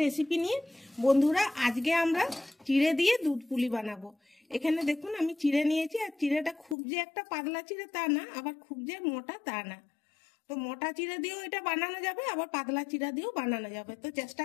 রেসিপি নিয়ে। বন্ধুরা, আজকে আমরা চিড়ে দিয়ে দুধ পুলি বানাবো। এখানে দেখুন আমি চিড়ে নিয়েছি, আর চিড়েটা খুব যে একটা পাতলা চিড়ে তা না, আবার খুব যে মোটা তা না। তো মোটা চিড়ে দিয়েও এটা বানানো যাবে, আবার পাতলা চিড়া দিয়েও বানানো যাবে। তো চেষ্টা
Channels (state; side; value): drops out; right; at 6.8 s